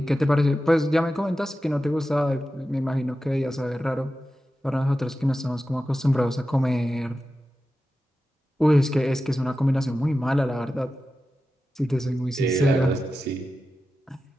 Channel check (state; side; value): normal; both; correlation 0.92